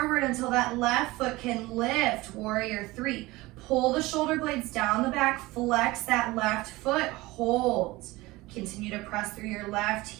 until that left foot can lift, warrior 3. Pull the shoulder blades down the back, flex that left foot, hold. Continue to press through your left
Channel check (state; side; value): quieter; left; 20.4 dB